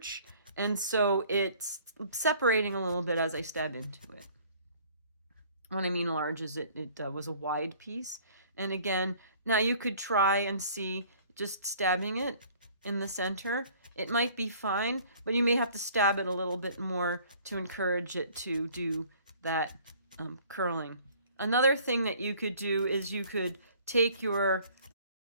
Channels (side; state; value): both; inverted; correlation -0.54